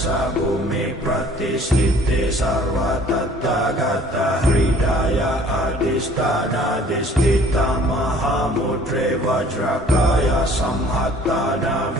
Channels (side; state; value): both; normal; correlation 0.54